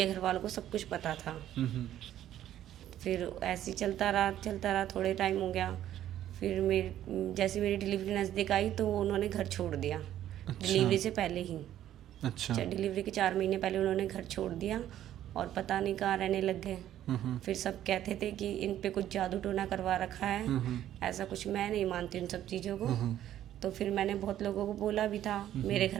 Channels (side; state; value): left; quieter; 11.9 dB